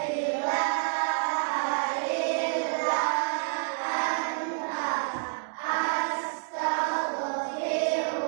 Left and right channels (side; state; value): left; silent; 59 dB below the other